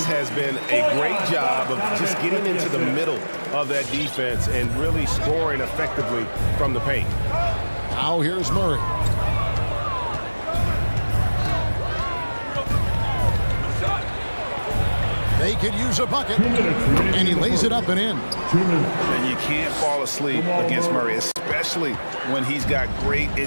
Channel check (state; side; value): inverted; both; correlation -1.00